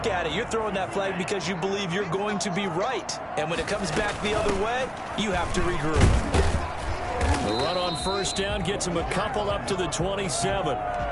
at it, you're throwing that flag because you believe you're going to be right. And when it comes back the other way, you have to regroup. The run on 1st down gets him a couple up to the 27.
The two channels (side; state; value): both; identical; correlation 1.00